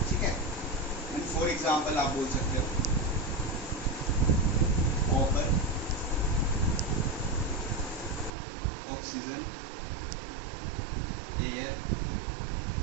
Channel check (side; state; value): left; drops out; at 8.3 s